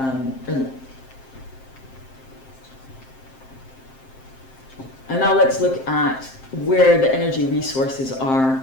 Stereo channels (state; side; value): late; right; 7.6 ms